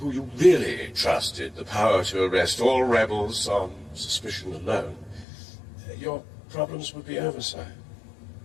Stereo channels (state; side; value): drops out; right; at 5.2 s